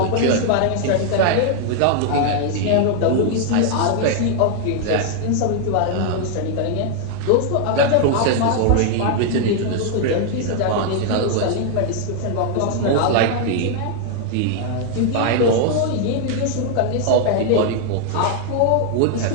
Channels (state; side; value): different; both; correlation 0.00